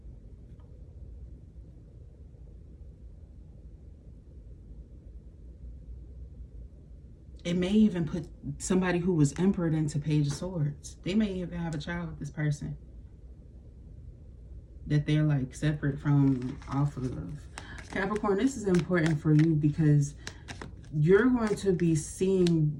It may even put somebody who was emperor into Page of Swords. They may even have a child with this person that they're like separate from off of. Capricorn, this is important for you because you're going to be seeing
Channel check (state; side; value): identical; both; correlation 1.00